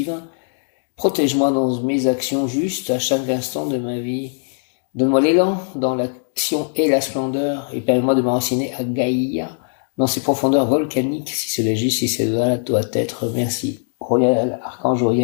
Protège-moi dans mes actions justes à chaque instant de ma vie. Donne-moi l'élan dans l'action et la splendeur et permets-moi de m'enraciner à Gaïa dans ses profondeurs volcaniques. Si cela est juste, si cela doit être, merci. Uriel, archange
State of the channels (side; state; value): right; silent; digital silence